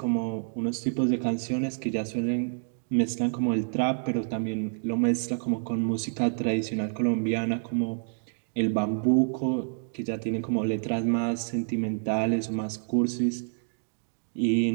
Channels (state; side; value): silent; left; digital silence